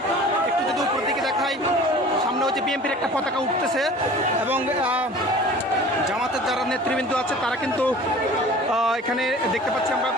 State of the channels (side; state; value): both; normal; correlation 0.44